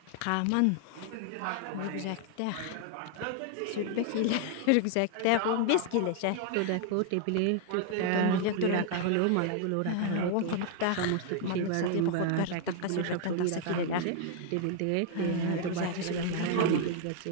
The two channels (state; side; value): different; both; correlation 0.00